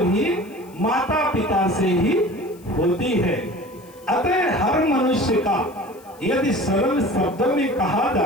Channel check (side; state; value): left; noise; hiss, 26 dB below the sound